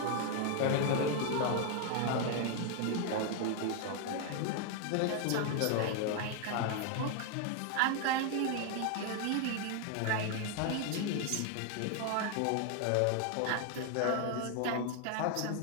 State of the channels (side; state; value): both; different; correlation 0.00